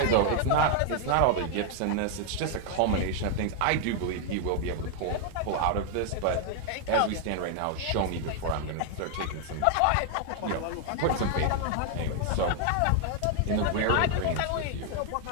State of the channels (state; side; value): different; both; correlation 0.00